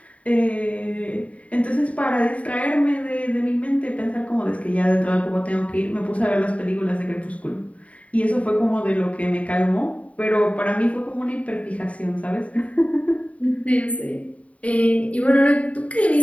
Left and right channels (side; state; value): right; late; 0.067 ms